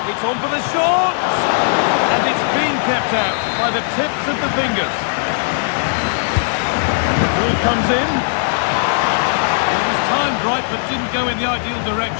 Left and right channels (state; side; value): silent; right; digital silence